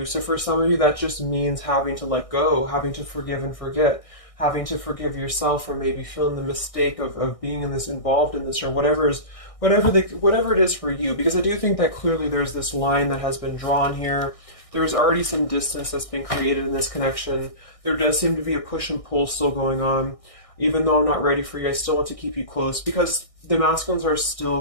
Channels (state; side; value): late; right; 1.6 ms